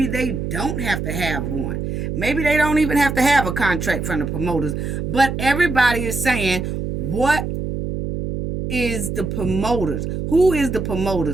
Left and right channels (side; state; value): right; noise; hum, 4 dB below the sound